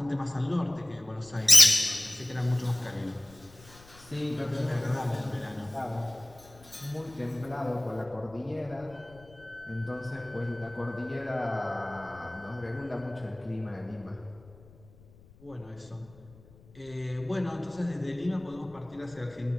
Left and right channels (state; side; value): noise; left; rumble, 24 dB below the sound